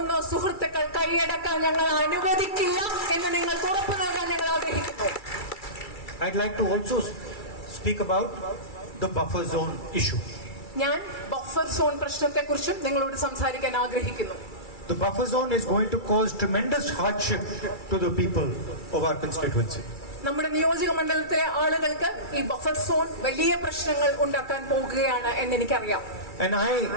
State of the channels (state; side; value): late; right; 2.3 ms